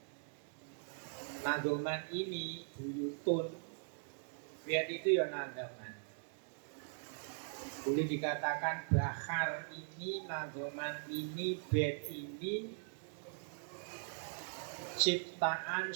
nadoman ini buyutun. Lihat itu ya nadoman. Boleh dikatakan bahar ini, nadoman ini, bait ini ciptaan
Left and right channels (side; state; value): left; silent; digital silence